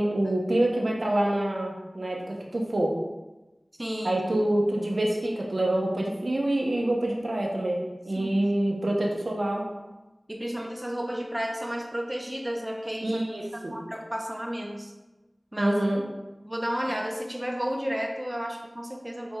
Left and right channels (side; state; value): both; normal; correlation 0.98